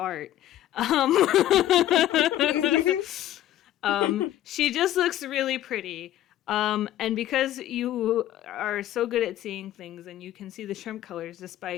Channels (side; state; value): right; quieter; 13.0 dB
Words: She just looks really pretty. And because you are so good at seeing things and you can see the shrimp colors